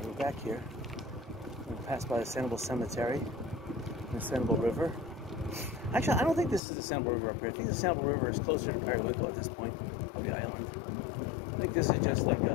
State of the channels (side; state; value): right; drops out; at 6.6 s